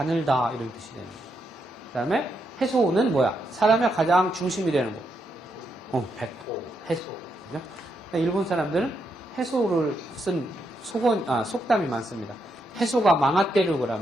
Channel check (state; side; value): normal; both; correlation 0.80